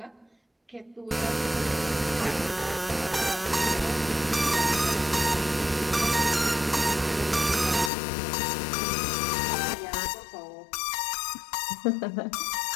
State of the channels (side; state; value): right; drops out; at 7.9 s